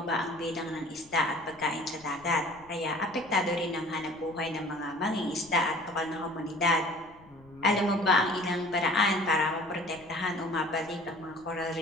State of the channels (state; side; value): noise; left; rumble, 26 dB below the sound